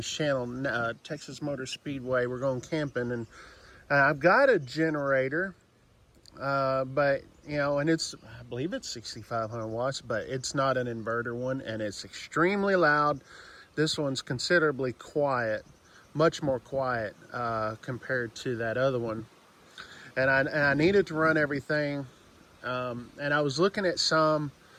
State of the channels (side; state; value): both; identical; correlation 1.00